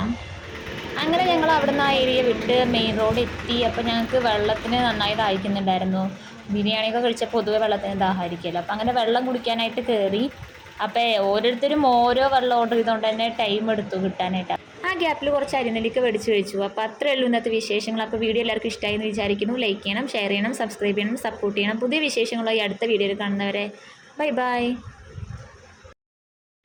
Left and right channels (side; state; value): both; identical; correlation 1.00